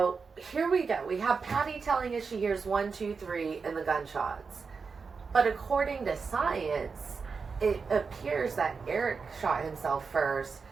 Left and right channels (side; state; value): left; quieter; 5.1 dB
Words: here we go. We have Patty telling us she hears 1, 2, 3 in the gunshots. But according to science, it appears that Eric shot himself first,